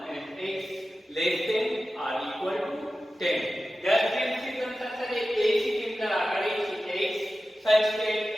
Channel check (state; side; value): normal; both; correlation 0.94